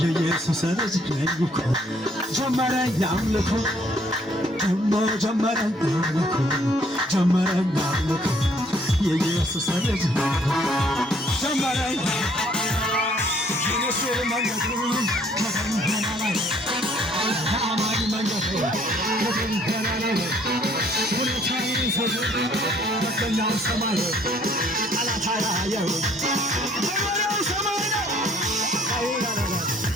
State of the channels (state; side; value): normal; both; correlation 0.62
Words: የኢየሱስ ልጅ ነኝ እኮ ጀመረኝ አምልኮ ደሞ ጀመረኝ አምልኮ ጀመረኝ አምልኮ የኢየሱስ ልጅ ነኝ ጀመረኝ የኢየሱስ መንገዱ ከደመና ላይ ከአማን መንገዱ ከደመና ላይ ሁኔታዬን ሰው በቀኛው ሰማይ ጠላት አያየው